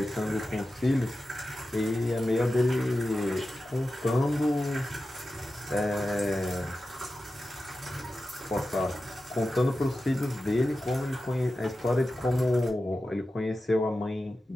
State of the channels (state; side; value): normal; both; correlation 0.93